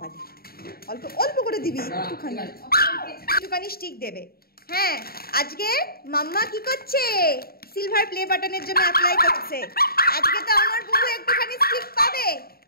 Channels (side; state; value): right; late; 0.44 ms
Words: দে, অল্প অল্প করে দিবি, একটুখানি একটুখানি স্টিক দেবে। হ্যাঁ আজকে মাম্মা কি করছে, সিলভার প্লে বাটনের জন্য অ্যাপ্লাই করছে। আজকে তো আমার বুবু একটুখানি স্টিক পাবে।